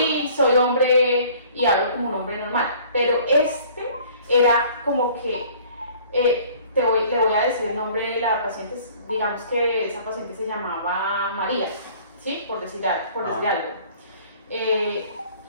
y soy hombre y hablo como un hombre normal, pero este era como que le voy a decir el nombre de la paciente, digamos que esa paciente se llamaba María, ¿sí? por decir algo.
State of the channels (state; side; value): inverted; both; correlation -0.52